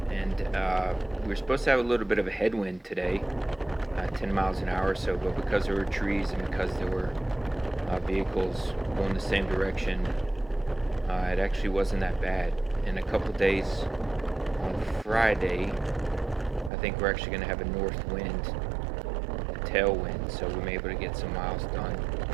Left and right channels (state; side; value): drops out; left; at 16.7 s